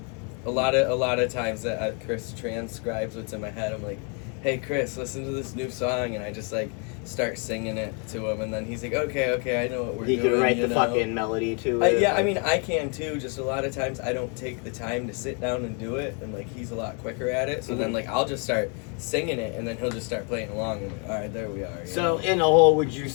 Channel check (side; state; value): right; quieter; 37.2 dB